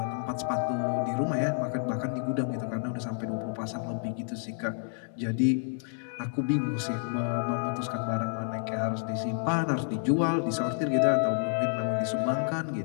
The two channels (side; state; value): right; silent; 58 dB below the other